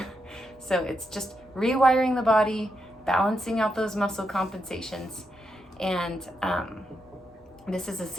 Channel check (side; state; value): both; normal; correlation 0.83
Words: So it's just rewiring the body, balancing out those muscle compensations, and this is a